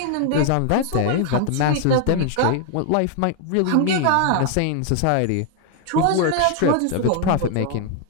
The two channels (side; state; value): both; different; correlation 0.00